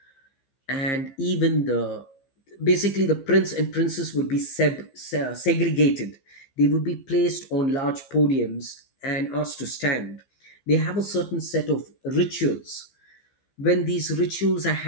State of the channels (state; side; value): late; right; 15 ms